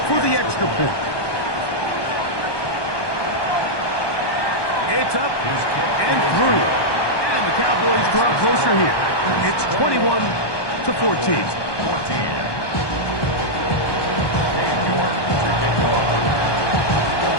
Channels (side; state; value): right; late; 1.2 ms